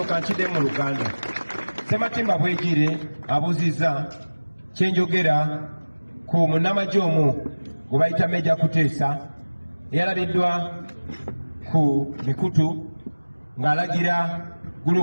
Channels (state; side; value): inverted; both; correlation -1.00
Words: kanchide mu Uganda. Sematimba Bwejire abuziza kyenjogera ku munnamagye omu gwe bayita Major Kuteesa eyalabiddwa ku mikutu ng'alagira